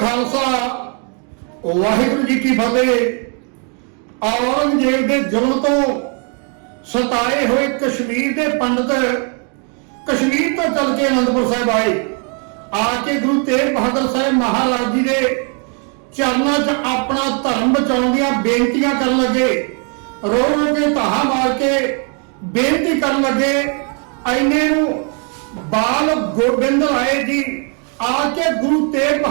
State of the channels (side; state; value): left; quieter; 39.2 dB